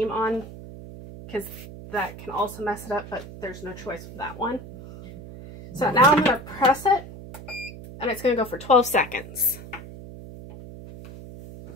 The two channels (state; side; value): noise; right; hum, 14 dB below the sound